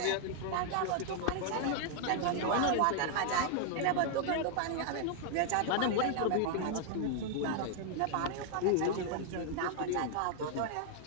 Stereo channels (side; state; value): both; different; correlation 0.00